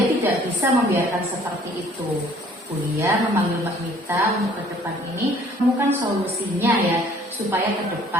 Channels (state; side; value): normal; both; correlation 0.57